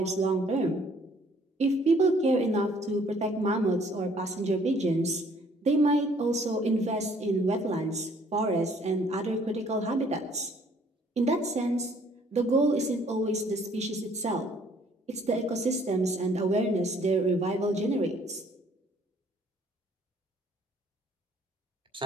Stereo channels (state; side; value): normal; both; correlation 0.60